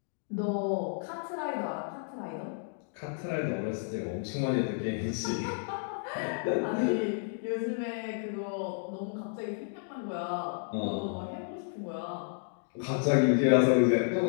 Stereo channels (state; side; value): silent; right; digital silence